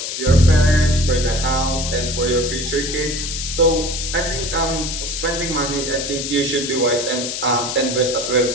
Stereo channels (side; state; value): left; noise; hiss, 4 dB below the sound